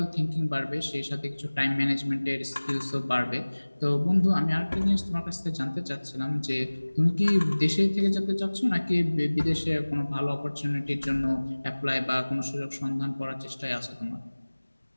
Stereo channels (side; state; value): both; inverted; correlation -1.00